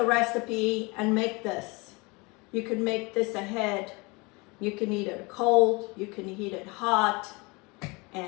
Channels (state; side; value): quieter; right; 26.9 dB